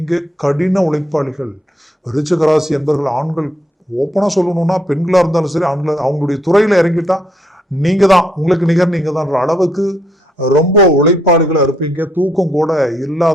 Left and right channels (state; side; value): normal; both; correlation 0.72